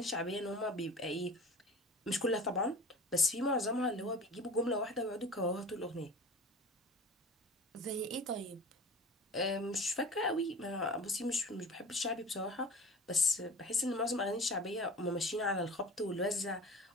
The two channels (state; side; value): normal; both; correlation 0.39